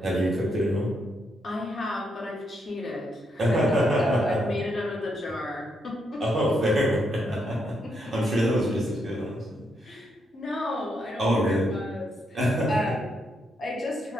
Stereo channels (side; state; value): both; normal; correlation 0.78